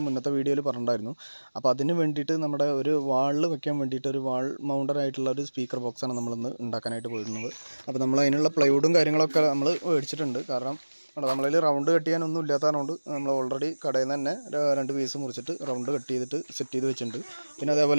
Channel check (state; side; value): inverted; both; correlation -1.00